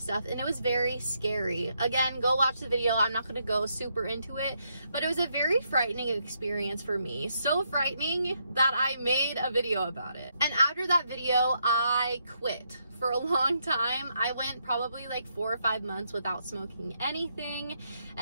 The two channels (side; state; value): both; inverted; correlation -0.77